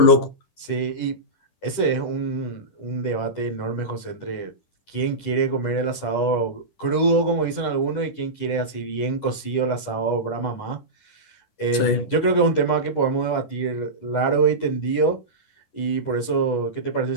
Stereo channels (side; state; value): right; late; 10 ms